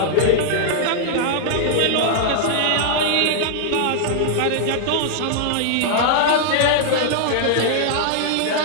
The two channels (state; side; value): different; both; correlation -0.01